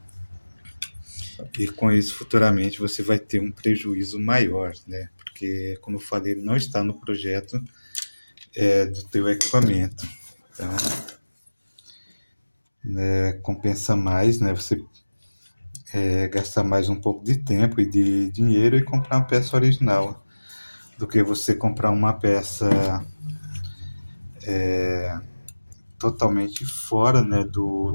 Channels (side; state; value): both; inverted; correlation -1.00